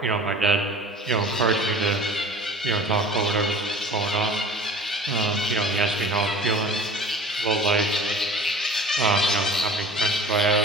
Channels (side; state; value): both; normal; correlation 0.43